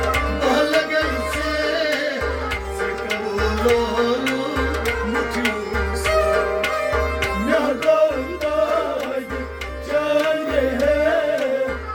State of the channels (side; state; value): both; identical; correlation 1.00